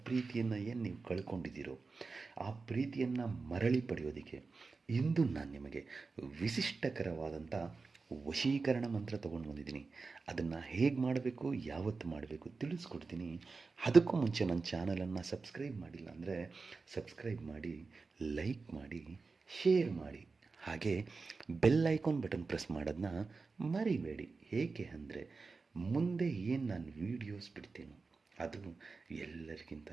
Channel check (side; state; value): left; quieter; 4.2 dB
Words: ಪ್ರೀತಿಯನ್ನು ಏನು ನೀವು ಕಳ್ಕೊಂಡಿದ್ದೀರೋ ಆ ಪ್ರೀತಿಯನ್ನು ಮರಳಿ ಪಡೆಯೋದಕ್ಕೆ ಇಂದು ನಾನು ನಿಮಗೆ ವಿಶಿಷ್ಟಕರವಾದಂಥ ವಶೀಕರಣ ಮಂತ್ರ ತೊಗೊಂಡು ಬಂದಿದ್ದೀನಿ. ಅದನ್ನು ಹೇಗೆ ಮಾಡಬೇಕು, ಯಾವತ್ತು ಮಾಡಬೇಕು ತಿಳಿಸ್ಕೊಡ್ತೀನಿ. ಅದಕ್ಕೂ ಮುಂಚೆ ನನ್ನ ಚಾನಲನ್ನು ಸಬ್ಸ್ಕ್ರೈಬ್ ಮಾಡಿಲ್ಲ ಅಂದರೆ ಸಬ್ಸ್ಕ್ರೈಬ್ ಮಾಡಿ, ಲೈಕ್ ಮಾಡಿ, ಶೇರ್ ಮಾಡಿ, ಹಾಗೆ ಬೆಲ್ ಐಕಾನ್ ಬಟನ್ ಪ್ರೆಸ್ ಮಾಡೋದನ್ನ ಮರಿಬೇಡಿ. ಏಕೆ ಅಂದರೆ ಮುಂದೆ ಏನು ನಾನು ವೀಡಿಯೋಸ್ ಬಿಡ್ತೀನೋ ಅದು ಎಲ್ಲರಿಗಿಂತ